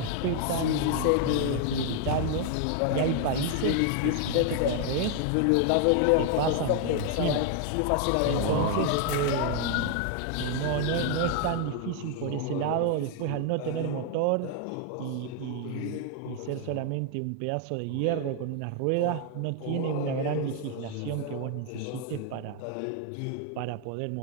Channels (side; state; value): both; different; correlation 0.00